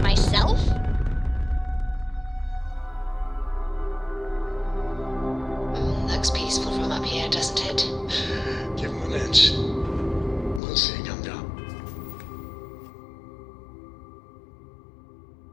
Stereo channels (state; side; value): drops out; right; at 10.6 s